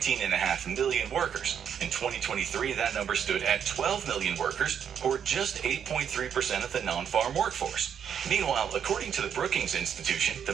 million workers. In 2023, that number stood at 12 million workers, or just 8.3% of the non-farm workforce. Meanwhile, according to the Brookings Institution, the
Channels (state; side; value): quieter; left; 8.2 dB